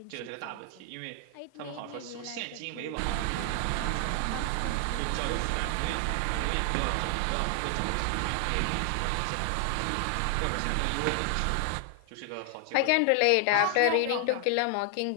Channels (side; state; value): both; different; correlation 0.00